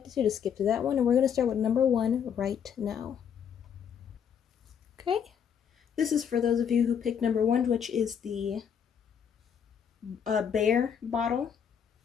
to, just skip to that one, and we're going to start with number 1 right now. Okay? This is for those of you who picked number 1, which is the Bear bottle,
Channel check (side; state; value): right; quieter; 7.8 dB